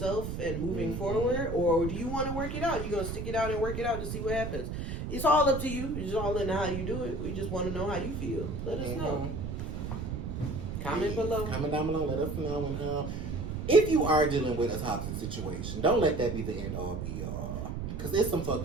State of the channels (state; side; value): noise; right; rumble, 5 dB below the sound